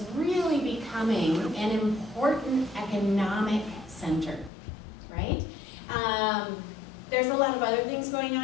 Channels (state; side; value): drops out; right; at 4.5 s